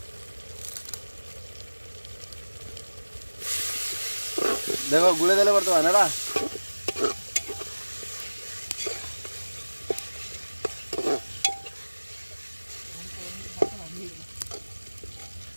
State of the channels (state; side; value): inverted; both; correlation -1.00